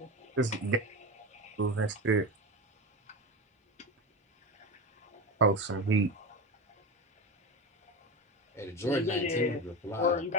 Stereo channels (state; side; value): normal; both; correlation 0.21